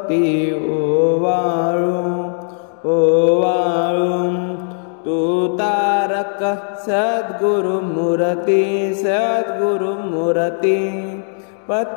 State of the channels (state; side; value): silent; right; digital silence